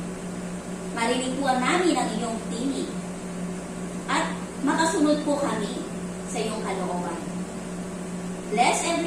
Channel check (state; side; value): identical; both; correlation 1.00